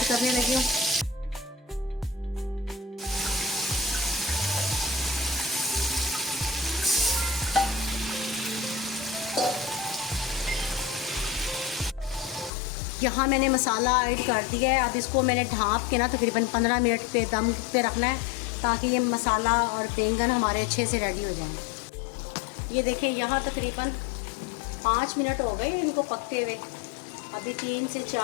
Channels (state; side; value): drops out; right; at 12.5 s